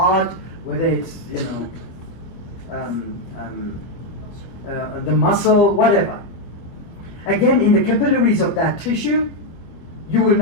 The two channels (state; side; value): late; right; 24 ms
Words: whether it's, the muscle, whatever. Again, in the capillaries of that tissue, you will